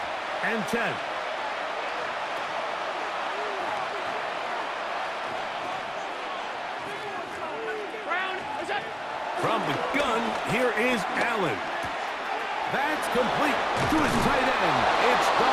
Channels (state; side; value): identical; both; correlation 1.00